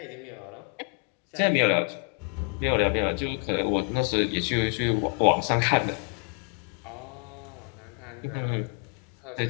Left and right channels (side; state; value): right; quieter; 38.3 dB